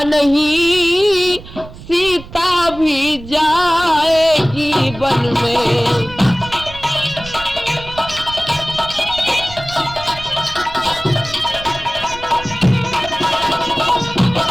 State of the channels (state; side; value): noise; right; rumble, 15 dB below the sound